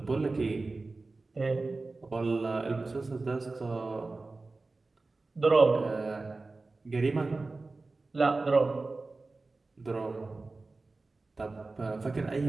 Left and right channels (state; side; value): quieter; left; 3.5 dB